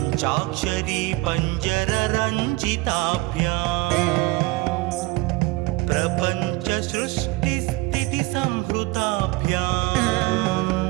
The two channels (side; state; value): left; quieter; 20.8 dB